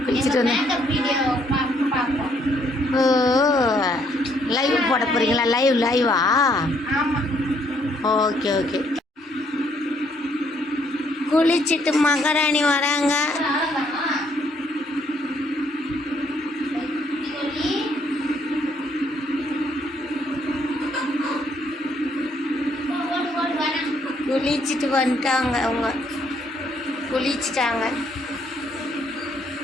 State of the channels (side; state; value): both; normal; correlation 0.69